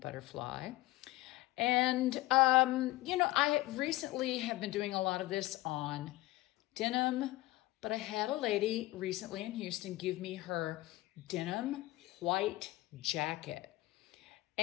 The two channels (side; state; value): right; quieter; 18.4 dB